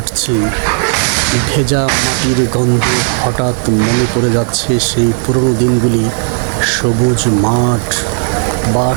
ভেজা মাটির গন্ধে হঠাৎ মনে পড়ে যাচ্ছে সেই পুরনো দিনগুলি। সবুজ মাঠ,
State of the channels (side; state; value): left; silent; 72 dB below the other